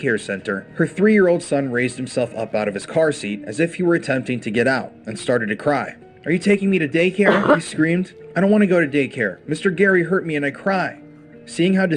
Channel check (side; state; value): both; identical; correlation 1.00